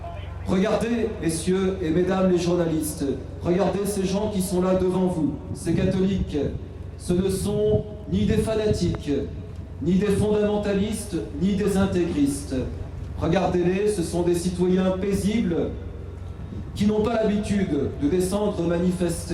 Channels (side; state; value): both; identical; correlation 1.00